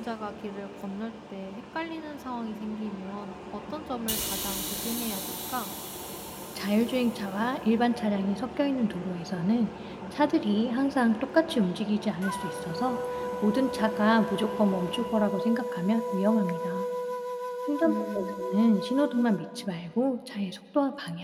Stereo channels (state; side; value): identical; both; correlation 1.00